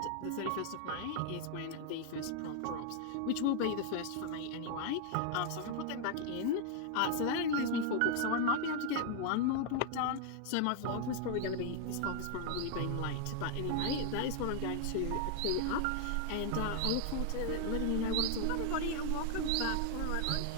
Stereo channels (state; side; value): different; both; correlation 0.00